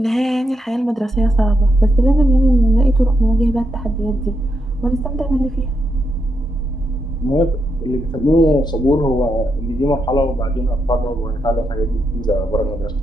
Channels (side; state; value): both; normal; correlation 0.82